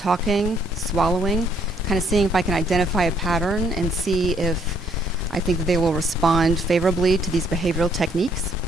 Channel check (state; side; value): normal; both; correlation 0.67